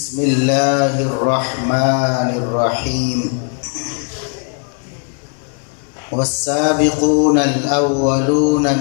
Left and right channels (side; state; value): right; quieter; 39.6 dB